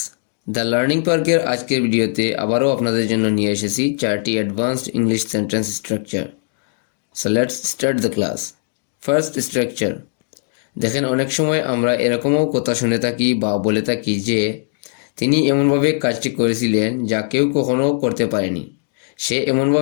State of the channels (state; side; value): silent; right; digital silence